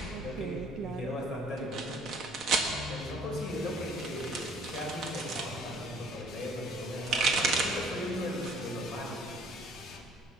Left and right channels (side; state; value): both; normal; correlation 0.57